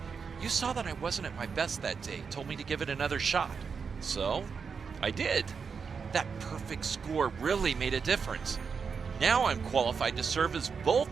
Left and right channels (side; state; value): left; quieter; 5.8 dB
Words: You saw that I wasn't at my best that day, told me to give it another shot. So, I did. That perfect score really made a difference. Now I'm qualified to serve as